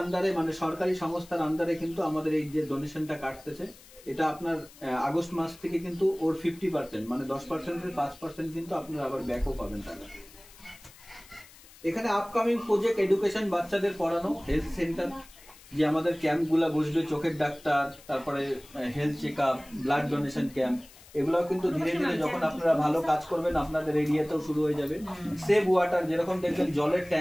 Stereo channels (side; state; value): left; noise; hiss, 22 dB below the sound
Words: মানে সরকারি সংস্থার আন্ডারে কিন্তু আমাদের এই যে ডোনেশনটা কাটতেছে, এটা আপনার আগস্ট মাস থেকে কিন্তু ওর 50%, মানে 10%-এর 5% কিন্তু আপনারা আবার ব্যাকও পাবেন টাকা। এখানে আপকামিং প্রজেক্ট এডুকেশন, বাচ্চাদের পড়ানো, হেলথ সেন্টার, যে আমাদের ক্যাম্পগুলো বসবে, চোখের ডাক্তার, তারপরে health check up, blood donation camp, এগুলোও কিন্তু ধীরে ধীরে যখন আপনারা ভালো কাজ করবেন আপনাদের এরিয়াতেও শুরু হয়ে যাবে। সেভ ওয়াটার, যেরকম দেখবেন জলের